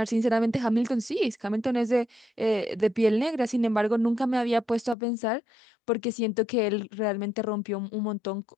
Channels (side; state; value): right; drops out; at 5.0 s